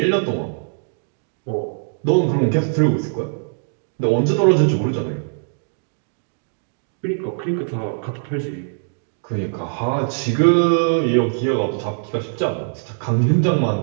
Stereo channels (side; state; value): left; silent; digital silence